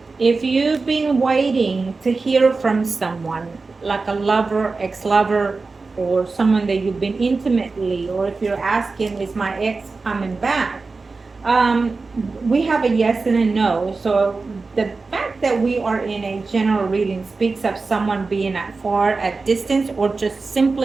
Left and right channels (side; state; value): left; quieter; 4.0 dB